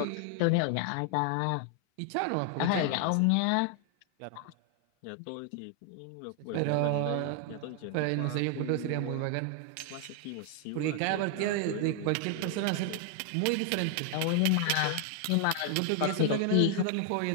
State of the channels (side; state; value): both; different; correlation 0.00